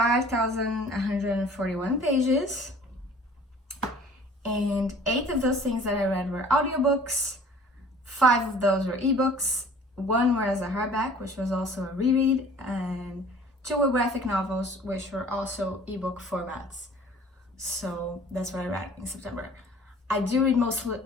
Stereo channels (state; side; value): normal; both; correlation 0.49